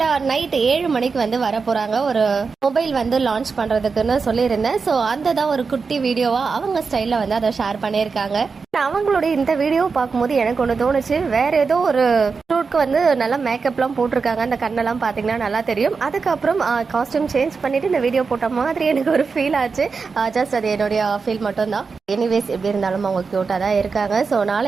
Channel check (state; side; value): quieter; left; 4.9 dB